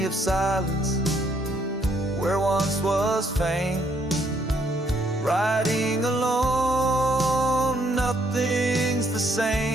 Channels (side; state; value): both; normal; correlation 0.70